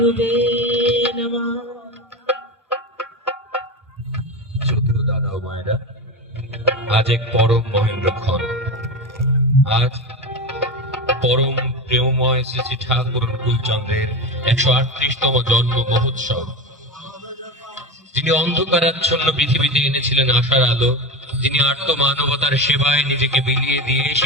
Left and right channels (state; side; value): normal; both; correlation 0.22